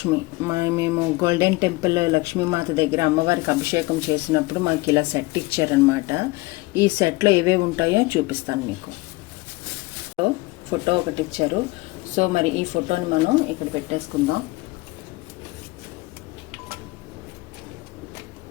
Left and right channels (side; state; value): right; quieter; 22.3 dB